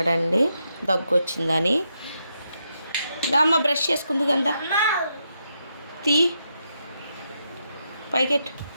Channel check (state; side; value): inverted; both; correlation -0.82